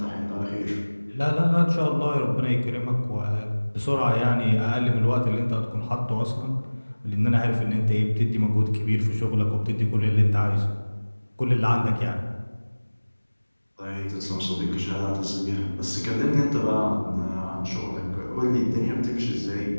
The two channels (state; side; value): inverted; both; correlation -1.00